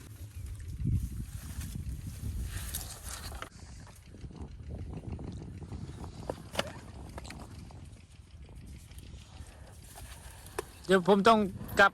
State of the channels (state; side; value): identical; both; correlation 1.00